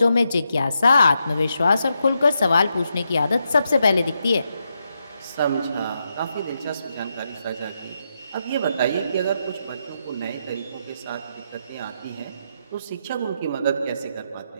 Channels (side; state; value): both; inverted; correlation -0.83